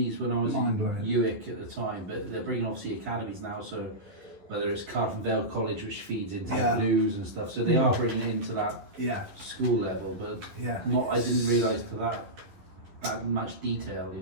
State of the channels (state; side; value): late; left; 11 ms